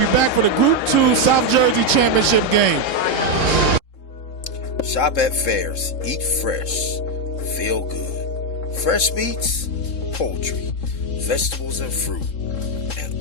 back for the Group 2 South Jersey Championship game. Shop at Fairs. Eat fresh. Feel good. Fresh meats, poultry, vegetables and fruit, and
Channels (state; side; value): late; right; 3.7 ms